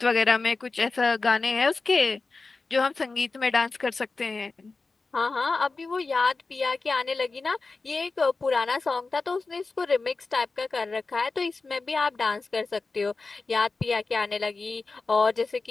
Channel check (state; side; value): quieter; right; 3.9 dB